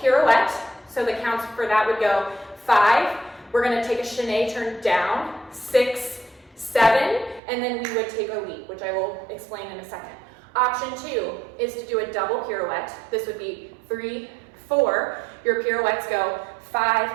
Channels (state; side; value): drops out; left; at 7.4 s